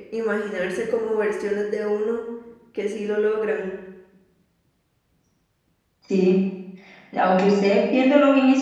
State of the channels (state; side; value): identical; both; correlation 1.00